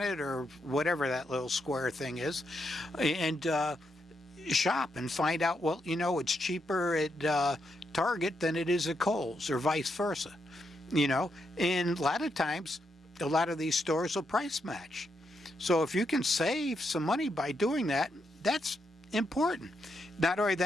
or whatever that little square thing is, and shop and find out, well, it's cheaper at Target than it is at Kohl's, or vice versa. And a lot of times, a lot of these stores will price match. So if you can save some money by doing that, that's important. Not only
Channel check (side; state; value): both; normal; correlation 0.81